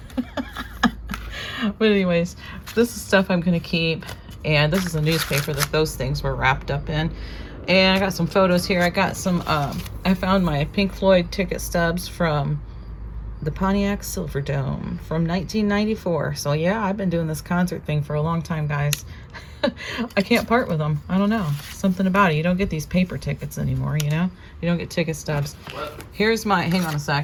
But anyways, this is stuff I'm gonna keep, and this is a newspaper that those things were wrapped up in. And I got some photos here. I got some, I found my Pink Floyd ticket stubs from the Pontiac Silverdome from 1994. So yeah, I've been doing this concert thing for a long time, guys. I can't part with them. I don't know. Something about it. You don't get these paper tickets anymore, you know? You don't get ticket stubs. Here's my, hang on a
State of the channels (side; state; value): both; identical; correlation 1.00